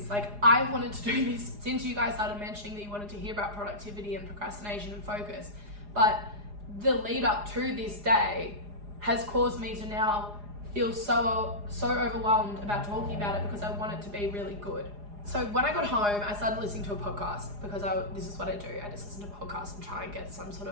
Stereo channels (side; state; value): left; late; 4.9 ms